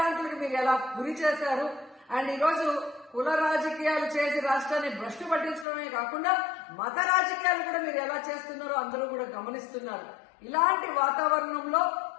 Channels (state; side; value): drops out; right; at 5.7 s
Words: మీరు ఎలా గురి చేశారు. అండ్ ఈరోజు కుల రాజకీయాలు చేసి రాష్ట్రాన్ని భ్రష్టు పట్టించడమే కాకుండా మత రాజకీయాలు కూడా మీరు ఎలా చేస్తున్నారో అందరూ కూడా గమనిస్తున్నారు. ఇలాంటి వాతావరణంలో